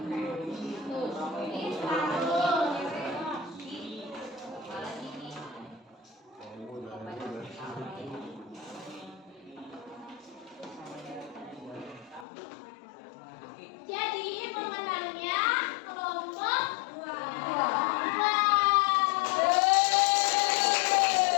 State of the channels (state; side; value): drops out; right; at 12.2 s